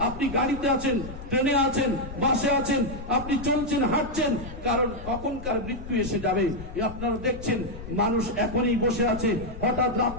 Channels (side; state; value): left; noise; rumble, 12 dB below the sound